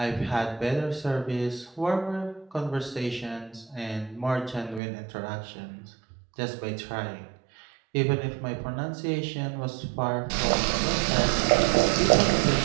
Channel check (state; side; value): drops out; left; at 4.8 s